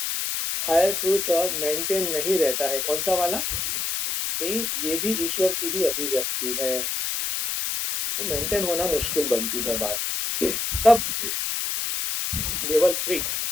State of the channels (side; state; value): left; noise; hiss, 1 dB below the sound